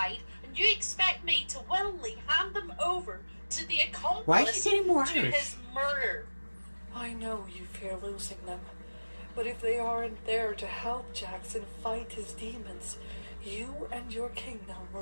and you expect me to willingly hand them over to the accomplice Why is he getting more to Irish? his murder? I know you fear losing them, but if they aren't there to help Jackson fight his demons, you and your kingdom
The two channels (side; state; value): both; inverted; correlation -1.00